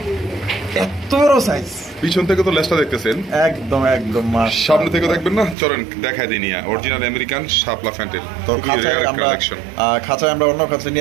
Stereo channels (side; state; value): left; drops out; at 5.6 s